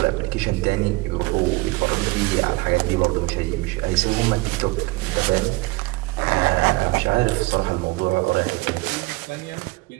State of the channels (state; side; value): quieter; left; 22.8 dB